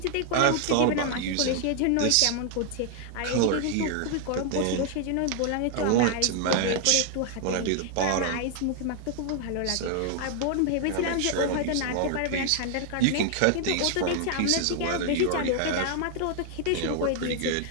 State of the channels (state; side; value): different; both; correlation 0.00